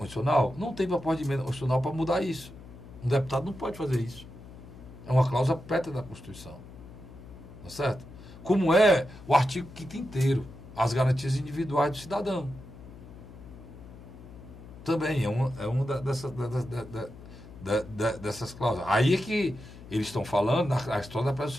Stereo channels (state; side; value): noise; left; hum, 17 dB below the sound